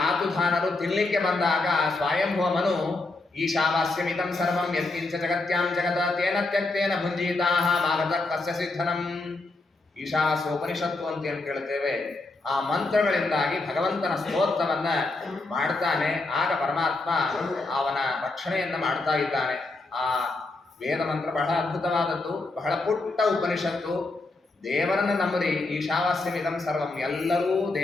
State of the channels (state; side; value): quieter; right; 3.2 dB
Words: ತಿನ್ಲಿಕ್ಕೆ ಬಂದಾಗ ಸ್ವಯಂಭವ ಮನು ಈಶಾವಾಸ್ಯಮಿದಂ ಸರ್ವಂ ಯತ್ಕಿಂಚ ಜಗತ್ಯಾಂ ಜಗದ ತೇನ ತ್ಯಕ್ತೇನ ಭುಂಜೀತಾಹ ಮಾಗತ ಕಸ್ಯ ಸಿದ್ಧನಂ. ಈಶಾವಾಸ್ಯ ಉಪನಿಷತ್ತು ಅಂತ ಏನು ಕೇಳುತ್ತೇವೆ, ಆ ಮಂತ್ರಗಳಿಂದಾಗಿ ಭಗವಂತನ ಸ್ತೋತ್ರವನ್ನ ಮಾಡ್ತಾನೆ. ಆಗ ಪರಮಾತ್ಮ ಅವನ ರಕ್ಷಣೆಯನ್ನ ಮಾಡ್ತಾ ಇದ್ದಾನೆ. ಆ ವೇದ ಮಂತ್ರ ಬಹಳ ಅದ್ಭುತವಾದದ್ದು, ಬಹಳ ಪುಟ್ಟ ಉಪನಿಷತ್ತು. ದೇವರನ್ನು ನಂಬರಿ, ಈಶಾವಾಸ್ಯಮಿದಂ ಸರ್ವಂ, ಎಲ್ಲರೂ